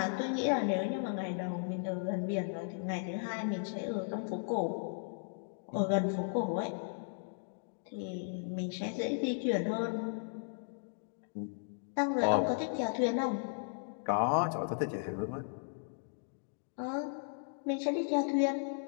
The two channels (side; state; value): right; silent; digital silence